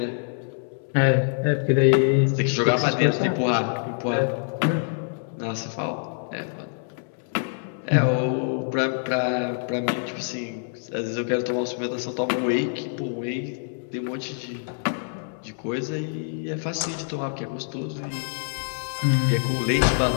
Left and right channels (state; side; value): silent; right; 61 dB below the other